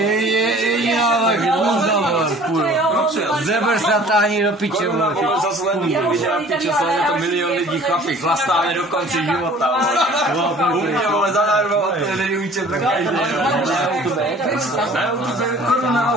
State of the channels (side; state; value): both; normal; correlation 0.49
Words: vole, hůzda, vole, kurva, zeber se a táhni do piče, vole, Je to milion lidí chlapi, Chlastáme do konce života. Umě, vole, zadarmo, to nevíče pro každý. Koruna na